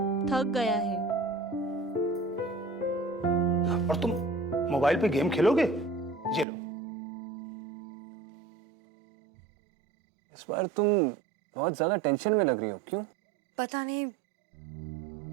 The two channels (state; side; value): drops out; left; at 6.5 s